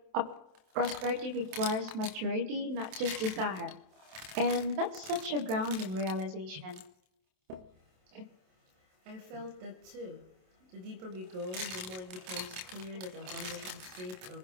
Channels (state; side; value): late; left; 27 ms